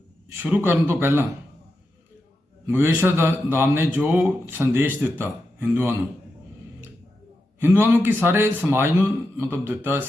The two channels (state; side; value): normal; both; correlation 0.88